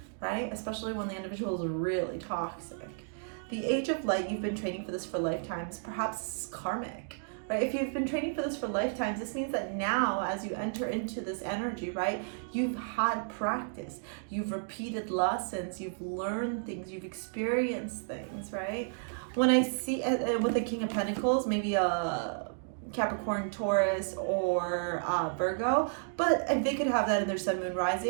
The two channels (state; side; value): silent; left; digital silence